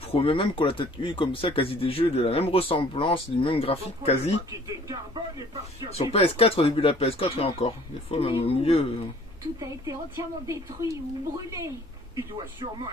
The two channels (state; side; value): normal; both; correlation 0.54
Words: promets même qu'on a peut-être eu comme ça quasi des jeux de la même ressemblance, du même graphique quasi. Sur PS4, au début de la PS4 et encore. Des fois même au milieu. Tout a été entièrement détruit ou brûlé. Il doit sûrement